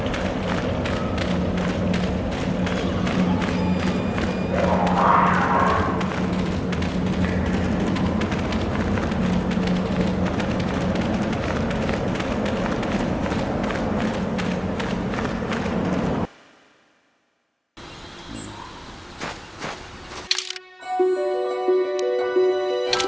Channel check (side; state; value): both; identical; correlation 1.00